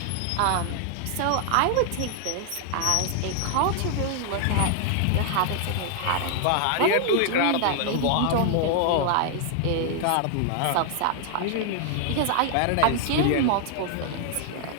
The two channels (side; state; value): both; different; correlation 0.00